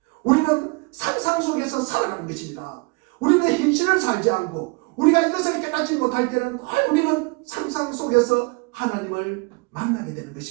우리는 상상 속에서 살아가는 것입니다. 우리는 현실을 살지 않고 우리가 이것을 깨닫지 못할 때는 우리는 상상 속에서 하나님을 만나게 되는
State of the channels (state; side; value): quieter; left; 29.5 dB